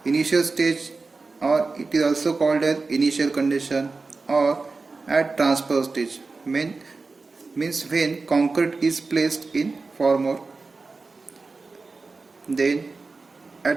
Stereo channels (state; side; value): quieter; left; 4.0 dB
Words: Initial stage, or it is also called as initial condition, or at transfer stage, means when concrete is placed in formwork. Then